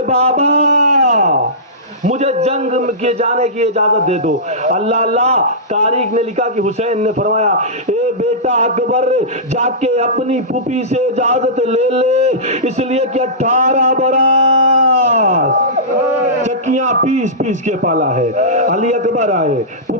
بابا مجھے جنگ کے جانے کی اجازت دے دو۔ اللہ اللہ۔ تاریخ نے لکھا کہ حسین نے فرمایا اے بیٹا اکبر جا کے اپنی پھوپھی سے اجازت لے لے، اس لیے کہ 18 برس چکیاں پیس پیس کے پالا ہے۔ علی اکبر آئے،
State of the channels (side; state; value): both; normal; correlation -0.18